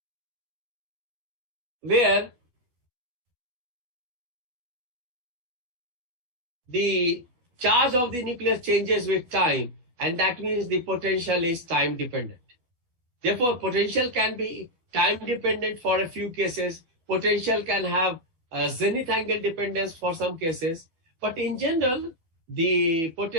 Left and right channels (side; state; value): left; late; 12 ms